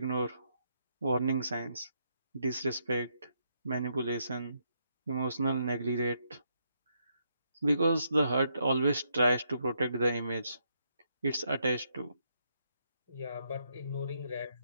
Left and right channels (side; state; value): both; inverted; correlation -0.76